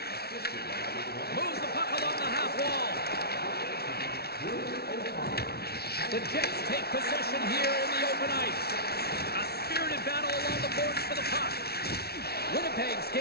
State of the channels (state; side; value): late; right; 0.46 ms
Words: Moves the puck along the half wall. The Jets take possession here in the open ice. A spirited battle along the boards for the puck. Winnipeg's